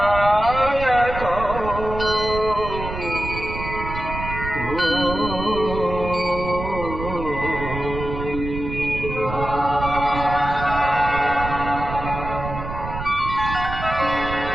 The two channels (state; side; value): noise; right; rumble, 7 dB below the sound